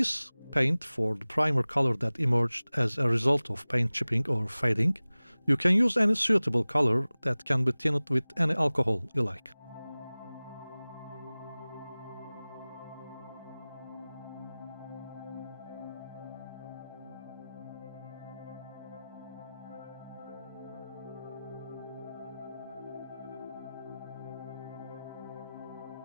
paint for the primer color that emerged as a result of paint chipping or fading. You can use any suitable color that can be tinted with any alcohol you like.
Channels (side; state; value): both; inverted; correlation -0.98